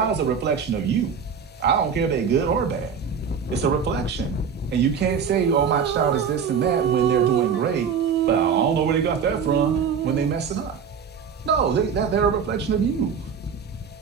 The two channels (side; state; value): left; quieter; 6.6 dB